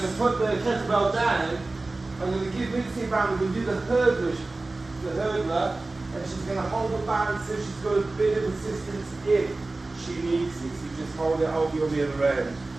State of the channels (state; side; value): quieter; left; 3.2 dB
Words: to put the kettlebell down. I'm going to give Mitzi a band. We're going to do the hurdler, and she's going to hold the band so she's got a bit of assistance if she needs it. So you just hold it, hold you on the other end.